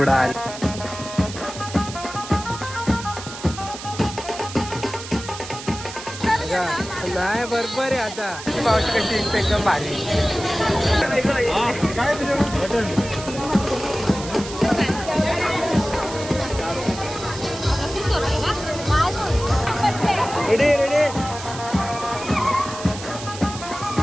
आणि नाही बरोबर आहे आता मावशी कशी दिसते एकदम भारी. रेडी रेडी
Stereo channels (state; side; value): noise; right; hiss, 12 dB below the sound